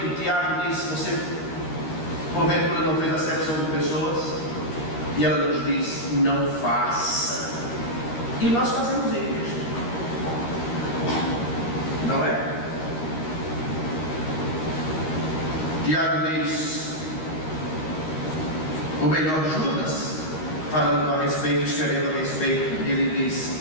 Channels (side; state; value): right; late; 13 ms